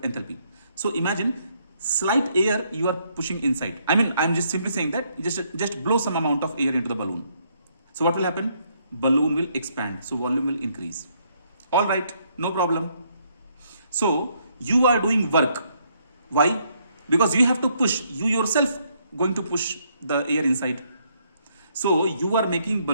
So imagine slight air you are pushing inside. I mean, I'm just simply saying that just blow some amount of air into the balloon. So what will happen? Balloon will expand, so volume will increase. All right, no problem. So you are doing work. Why? Because you have to push. You yourself going to push the air inside. So you are making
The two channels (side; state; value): both; inverted; correlation -0.71